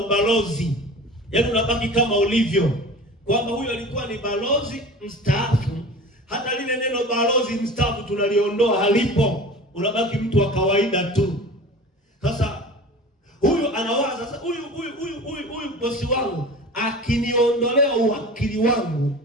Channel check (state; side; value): normal; both; correlation 0.37